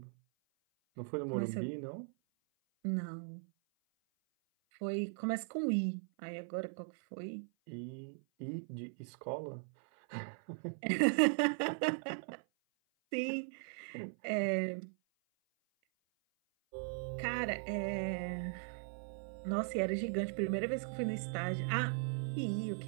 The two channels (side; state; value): left; silent; 52 dB below the other